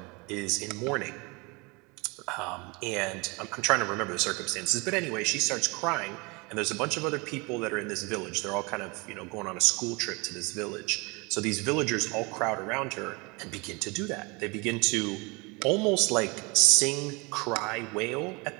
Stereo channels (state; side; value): quieter; left; 27.6 dB